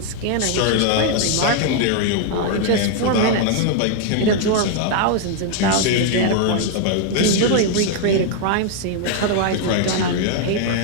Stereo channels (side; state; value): both; different; correlation 0.00